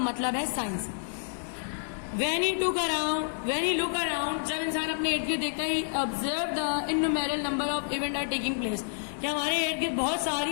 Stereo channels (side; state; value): right; silent; digital silence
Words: है science. When he look around, जब इंसान अपने इर्द गिर्द देखता है, observe the innumerable number of events are taking place, कि हमारे इर्द गिर्द बहुत सारी